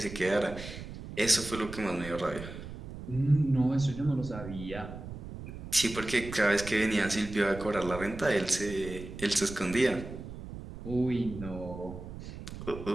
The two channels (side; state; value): right; noise; rumble, 11 dB below the sound